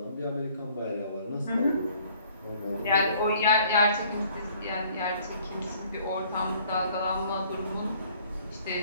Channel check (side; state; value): both; inverted; correlation -0.57